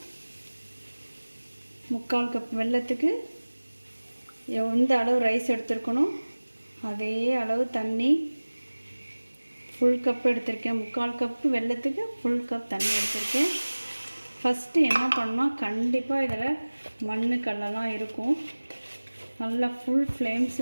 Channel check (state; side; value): inverted; both; correlation -1.00